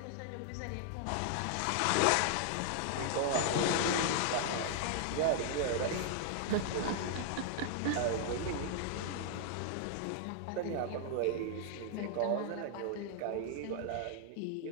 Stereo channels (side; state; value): both; different; correlation 0.00